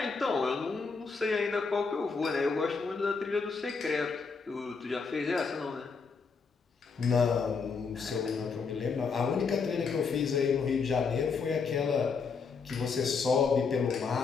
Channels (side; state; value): right; quieter; 5.1 dB